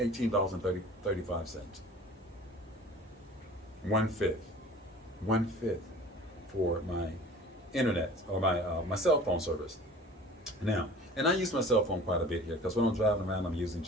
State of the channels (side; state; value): both; normal; correlation 0.45